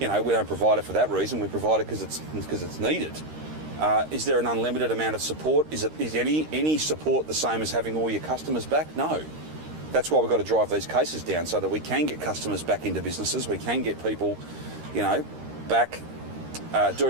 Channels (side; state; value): left; late; 13 ms